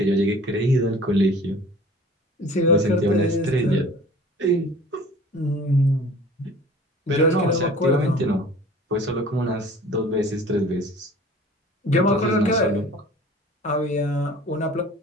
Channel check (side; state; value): both; normal; correlation 0.46